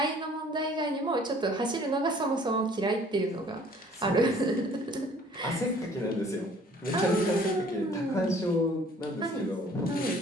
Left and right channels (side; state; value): both; normal; correlation 0.55